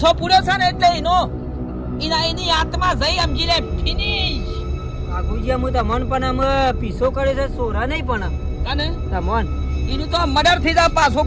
પૂર્યો છે ને એટલે એની આત્મા જઈ સમજી લે ફિનિશ. બાબુજી હું તમન પણ અમે પીસો કરે છે સોરા નહીં પણ કને તમન એનું તો મર્ડર થઈ જાય પાછો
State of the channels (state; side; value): identical; both; correlation 1.00